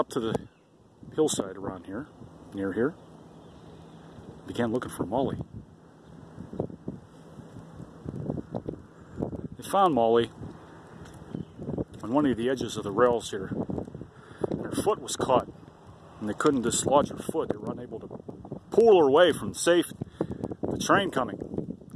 to the hillside around here, near here. Began looking for Molly. They found Molly on one of the edges of the rails here. And her foot was caught, and they couldn't dislodge her foot. They were unable to pull her away from the train coming.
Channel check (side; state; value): both; identical; correlation 1.00